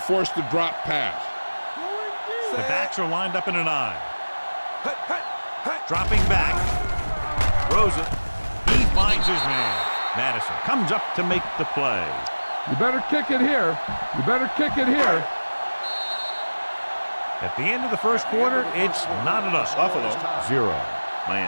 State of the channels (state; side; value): inverted; both; correlation -1.00